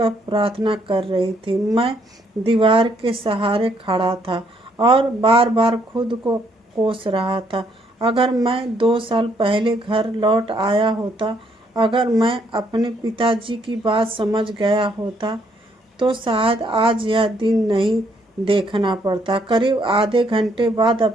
प्रार्थना कर रही थी। मैं दीवार के सहारे खड़ा था और बार बार खुद को कोस रहा था। अगर मैं 2 साल पहले घर लौट आया होता, अगर मैं अपने पिताजी की बात समझ गया होता तो शायद आज यह दिन नहीं देखना पड़ता। करीब आधे घंटे बाद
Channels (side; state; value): both; normal; correlation 0.70